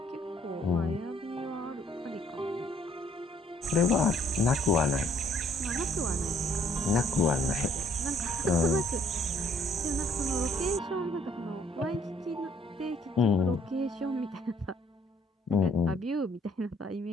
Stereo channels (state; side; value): normal; both; correlation 0.63